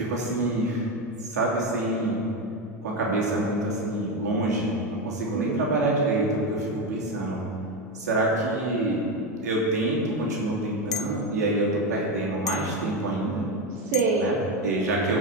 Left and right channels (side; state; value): both; normal; correlation 0.13